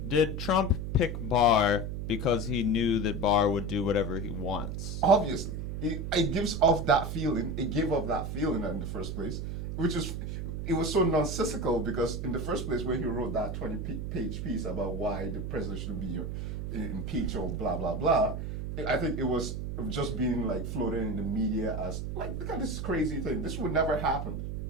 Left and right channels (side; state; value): right; noise; hum, 4 dB below the sound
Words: Did Trump pick Barr because he knew that Barr would do whatever he wants? Obviously. It gives off that feeling. It gave off that feeling in the first place, it was so nonsensical because in the first place when he wrote that 20-page piece about why the president should be impeached or blah, blah, blah, I think it was just being floated in the media as look at this crazy thing. This would never happen.